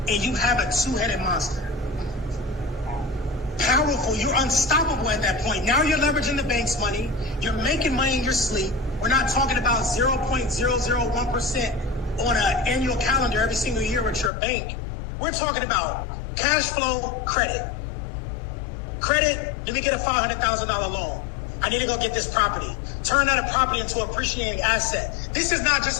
and you have a two-headed monster. Powerful. You're unstoppable at that point. Now you're leveraging the bank's money. You're making money in your sleep. We're not talking about 0.001% on an annual calendar every single year with your bank. We're talking about cash flow, credit. Credit, let me get a $500,000 loan. I need to go get this property. Turn that property into an appreciating asset. This is not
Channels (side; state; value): right; drops out; at 14.3 s